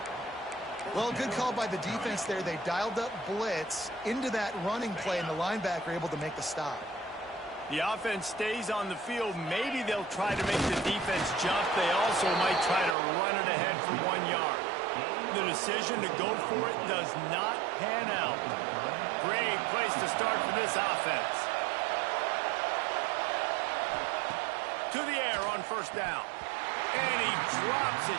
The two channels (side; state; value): left; drops out; at 13.0 s